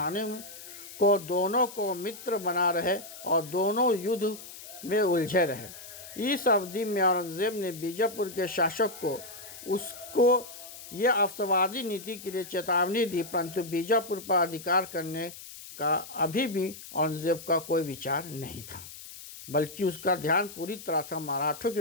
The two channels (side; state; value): left; noise; hiss, 14 dB below the sound